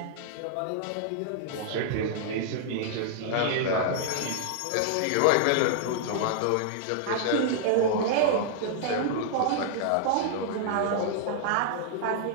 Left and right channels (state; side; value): different; both; correlation -0.01